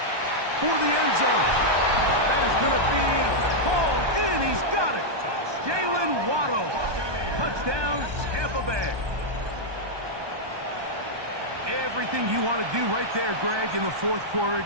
for the end zone. That is going to be hauled in. He's got it. Jalen Waddle. Touchdown, Tampa Bay. Everything you want to do right there, Greg, in the fourth quarter.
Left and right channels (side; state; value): left; late; 1.2 ms